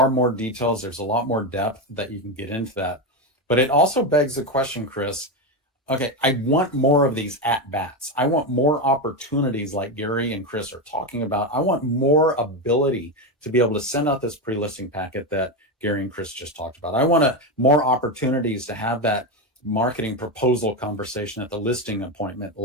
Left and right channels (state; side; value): normal; both; correlation 0.12